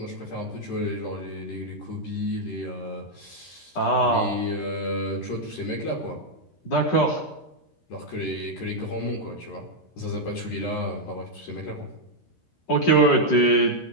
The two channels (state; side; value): late; right; 13 ms